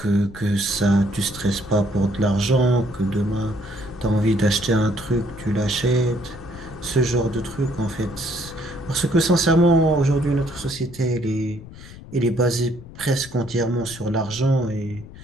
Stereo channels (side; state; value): left; noise; rumble, 17 dB below the sound